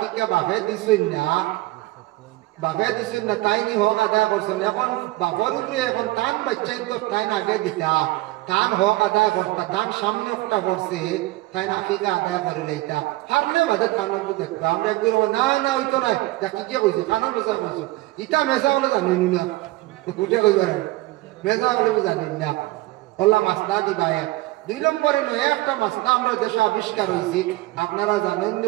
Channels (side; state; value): left; quieter; 19.0 dB